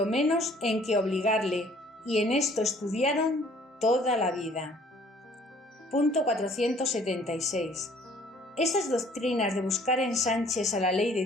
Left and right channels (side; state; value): both; normal; correlation 0.57